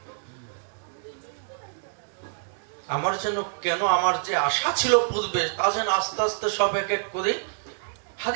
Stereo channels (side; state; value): left; silent; digital silence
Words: আমার যেন কেন আমার যে আশা ছিল পূর্বে, তা যেন আস্তে আস্তে সব এক এক করে